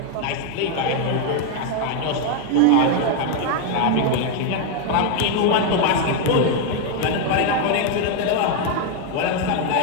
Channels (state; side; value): different; both; correlation 0.01